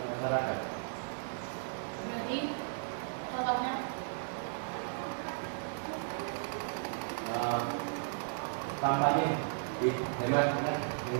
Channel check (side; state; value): left; silent; digital silence